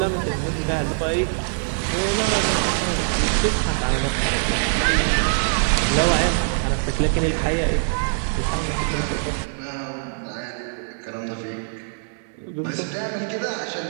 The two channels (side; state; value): left; silent; digital silence